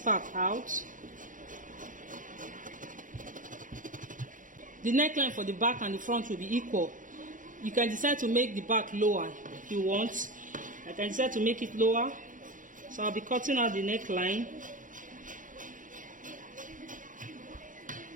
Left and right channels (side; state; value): left; late; 0.38 ms